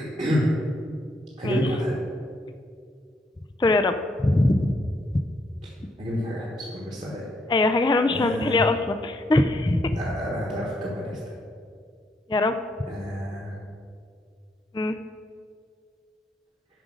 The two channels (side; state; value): both; normal; correlation 0.75